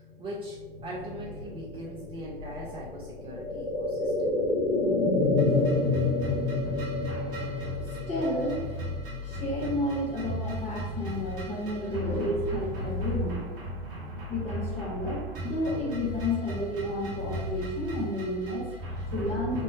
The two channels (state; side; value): normal; both; correlation 0.26